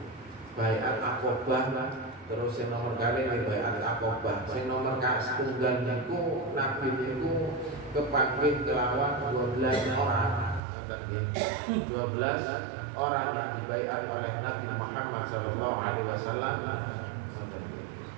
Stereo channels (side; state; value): left; drops out; at 10.6 s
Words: baiat Aqabah, terus yang nomor kali ini baiat Aqabah. Sing nomor setunggal niku Nabi niku kepanggih kelawan 12 orang. 12 orang yang dibaiat oleh Nabi Muhammad SAW.